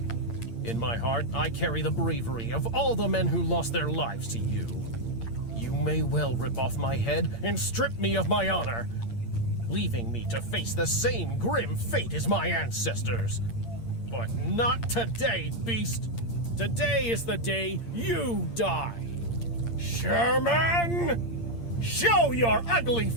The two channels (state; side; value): late; right; 8.7 ms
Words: In my heart, I carry the bravery of all the men who lost their lives to you. You may well rip off my head and strip me of my honor, leaving me to face the same grim fate as my ancestors. But not today, beast. Today is the day you die. Sherman! Show your ugly